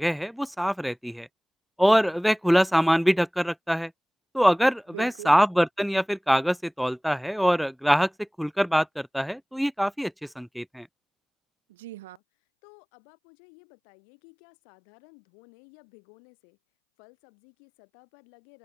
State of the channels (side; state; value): right; drops out; at 12.2 s